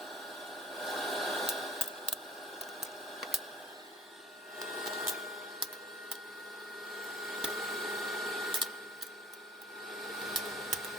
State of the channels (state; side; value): normal; both; correlation 0.50